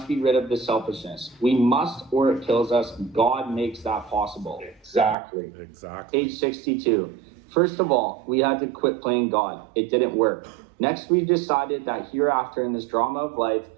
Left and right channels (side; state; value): left; drops out; at 5.2 s